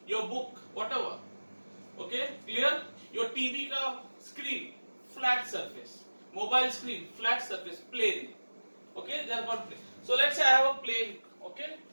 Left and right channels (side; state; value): both; inverted; correlation -1.00